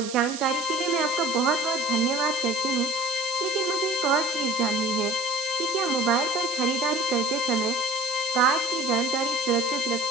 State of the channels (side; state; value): right; noise; hiss, 10 dB below the sound